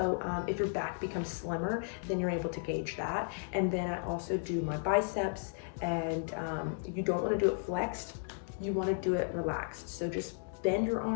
if your back becomes slimmer, then you're able to gauge that. And then I also do my biceps, and you don't want to do it flexed, you want to do it relaxed. So just bend your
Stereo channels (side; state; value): right; silent; digital silence